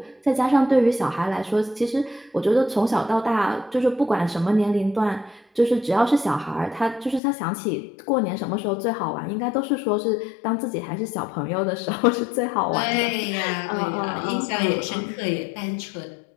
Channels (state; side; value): drops out; right; at 7.2 s